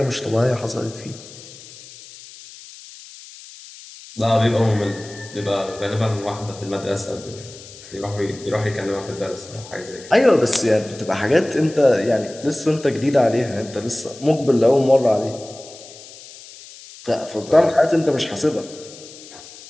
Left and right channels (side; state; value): left; noise; hiss, 18 dB below the sound